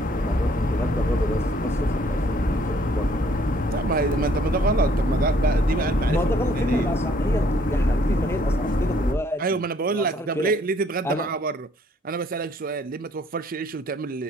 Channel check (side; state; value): both; normal; correlation 0.62